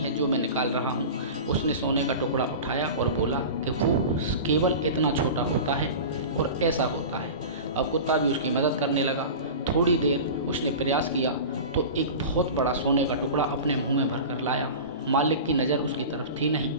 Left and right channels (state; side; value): inverted; both; correlation -0.31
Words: जो मैं निकाल रहा हूँ। उसने सोने का टुकड़ा उठाया और बोला कि वो केवल इतना छोटा होता है और ऐसा होता है। अब कुत्ता भी उसकी मदद करने लगा। थोड़ी देर उसने प्रयास किया तो एक बहुत बड़ा सोने का टुकड़ा अपने मुंह में भरकर लाया। मालिक की नज़र उसकी तरफ थी नहीं।